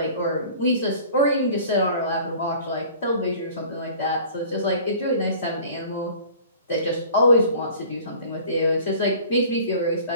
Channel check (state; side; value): inverted; both; correlation -0.46